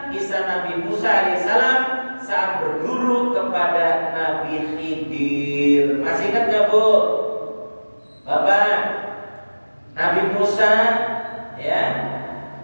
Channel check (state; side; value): inverted; both; correlation -1.00